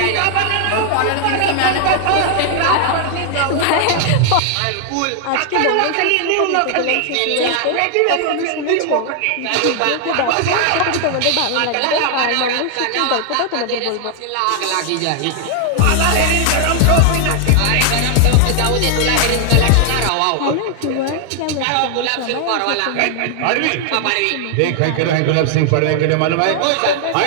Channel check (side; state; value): both; different; correlation 0.00